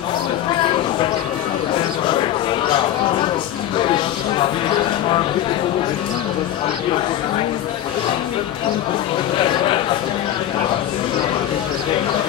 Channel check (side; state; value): right; quieter; 11.9 dB